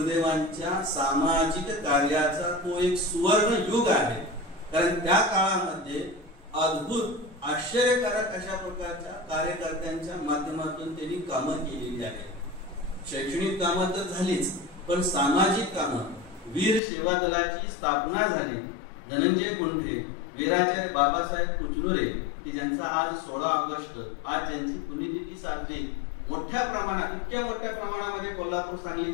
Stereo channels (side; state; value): right; drops out; at 16.8 s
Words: सामाजिक कार्याचा तो एक सुवर्ण युग आहे. कारण त्या काळामध्ये अद्भुत आश्चर्यकारक अशा प्रकारच्या कार्यकर्त्यांच्या माध्यमातून त्यांनी कामं केलेली आहेत. शैक्षणिक कामं तर झालीच, पण सामाजिक कामं, वीर सेवा दलाची स्थापना झाली. धनंजय गुंढे, वीराचार्य बाबासाहेब कुचनुरे की ज्यांचा आज 16 ऑगस्ट आज ज्यांची पुण्यतिथी साजरी मोठ्या प्रमाणात, इतक्या मोठ्या प्रमाणामध्ये कोल्हापूर सांगली